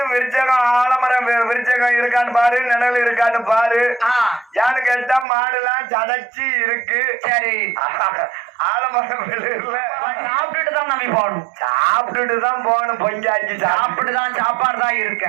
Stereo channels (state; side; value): drops out; left; at 5.2 s